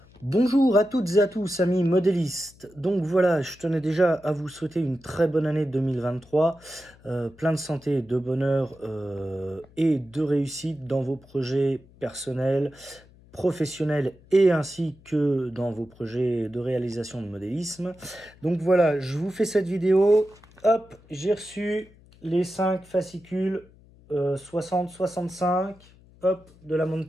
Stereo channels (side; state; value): left; noise; hum, 26 dB below the sound